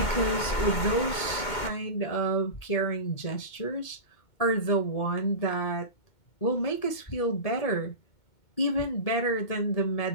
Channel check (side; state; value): right; late; 2.2 ms